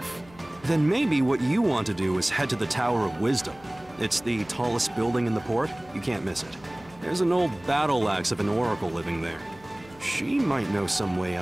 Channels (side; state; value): left; noise; hum, 24 dB below the sound